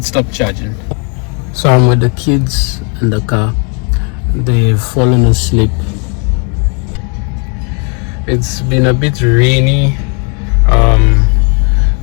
stopped charging. So I'm with the kids in the car. They've fallen asleep. It's been a bit rainy.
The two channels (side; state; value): right; quieter; 36.9 dB